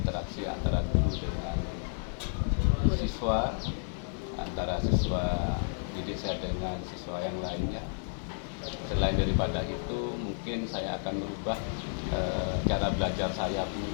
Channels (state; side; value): silent; right; 57 dB below the other